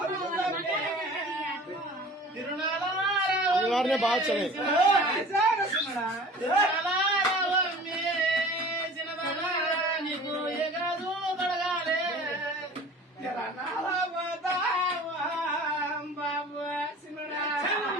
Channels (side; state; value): both; normal; correlation 0.43